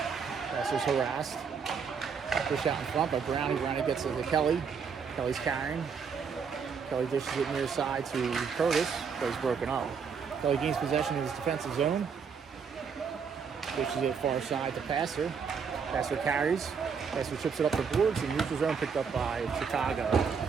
Passer's harassed. Push out in front by Brownie. Brownie gets it to Kelly. Kelly's carrying. Kelly dishes it near side to Curtis. Plays broken up. Kelly gains possession in his defensive zone. Dishes it far side to Passer. Passer carries. Passer chips it up the boards. And neutral zone picked up by Chicago.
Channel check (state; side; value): quieter; left; 6.1 dB